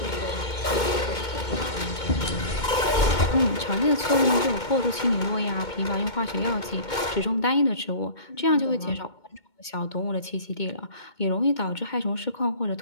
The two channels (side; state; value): right; late; 2.2 ms